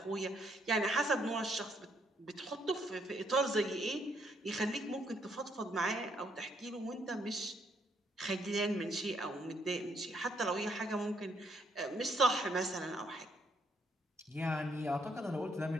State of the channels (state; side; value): normal; both; correlation 0.71